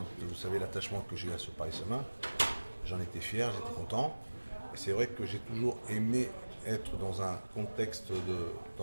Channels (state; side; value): inverted; both; correlation -1.00